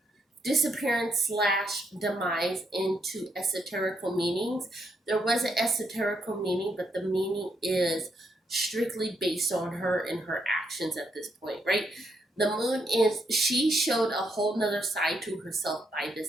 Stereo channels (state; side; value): normal; both; correlation 0.77